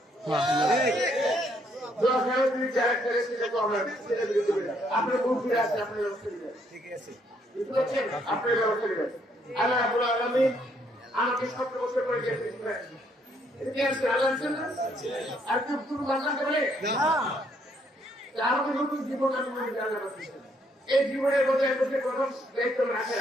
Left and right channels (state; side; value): normal; both; correlation 0.70